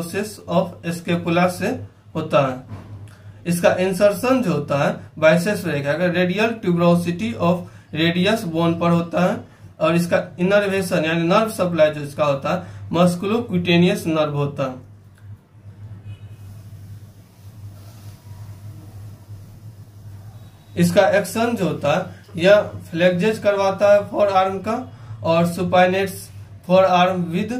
of scapula से होता है। इसका इंसर्शन जो होता है बाइसेप्स ब्रेकियाई का radial tuberosity of radius bone पर होता है, और इसका इनर्वेशन यानी नर्व सप्लाई जो इसका होता है मस्कुलोक्यूटेनियस नर्व होता है। इसका एक्शन जो होता है यह फ्लेक्जेज करवाता है फॉर आर्म का, और supinates forearm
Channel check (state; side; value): identical; both; correlation 1.00